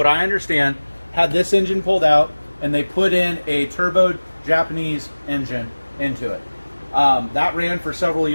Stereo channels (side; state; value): both; inverted; correlation -1.00